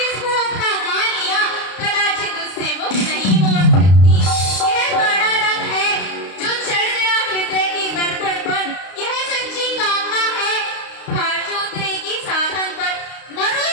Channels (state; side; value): late; right; 32 ms